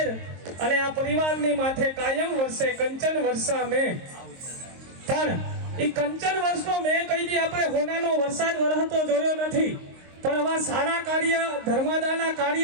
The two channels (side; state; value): left; late; 23 ms